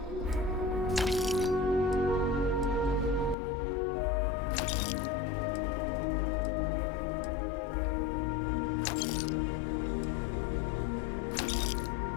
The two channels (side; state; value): right; drops out; at 3.4 s